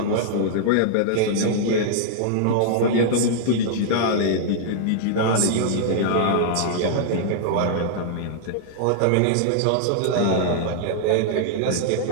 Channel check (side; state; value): both; different; correlation -0.01